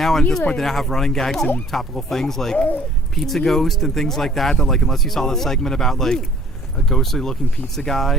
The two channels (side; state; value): both; normal; correlation 0.55